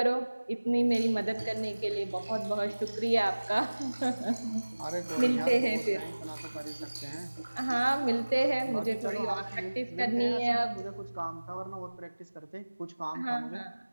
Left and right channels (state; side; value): inverted; both; correlation -1.00